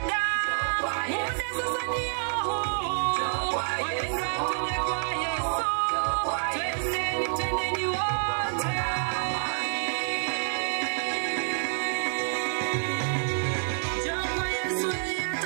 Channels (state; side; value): silent; left; digital silence